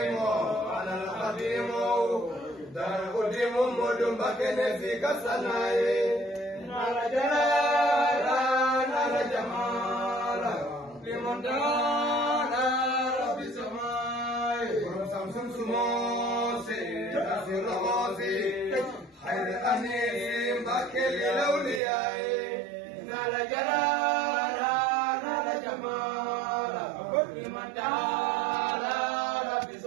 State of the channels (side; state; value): left; drops out; at 21.8 s